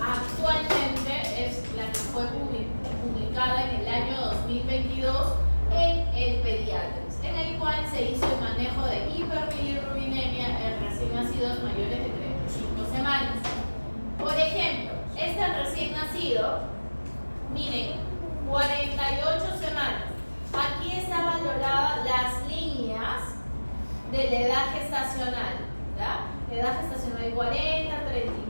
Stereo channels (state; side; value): inverted; both; correlation -1.00